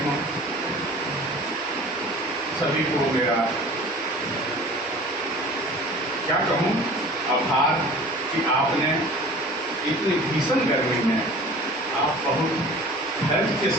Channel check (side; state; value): both; normal; correlation 0.43